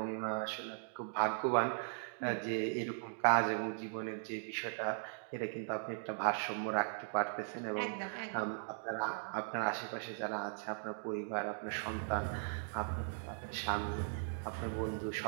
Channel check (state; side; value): silent; left; digital silence